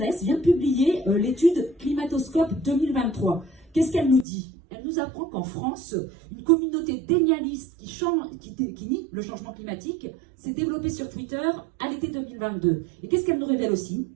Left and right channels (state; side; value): drops out; left; at 4.2 s